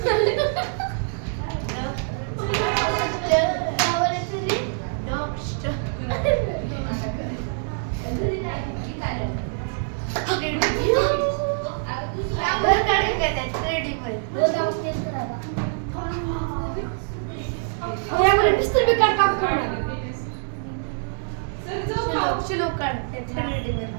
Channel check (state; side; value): silent; left; digital silence